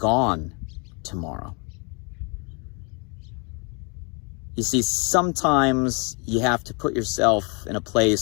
tomorrow? You see, sometimes you have to put yourself in a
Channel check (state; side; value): quieter; right; 33.4 dB